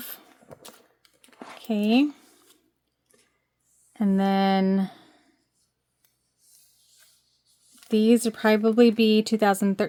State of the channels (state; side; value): identical; both; correlation 1.00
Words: Okay. And then these would probably be